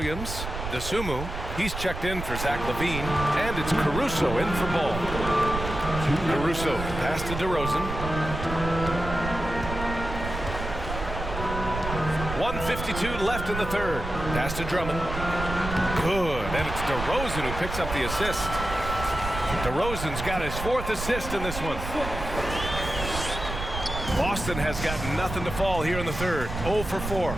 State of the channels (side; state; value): right; noise; rumble, 6 dB below the sound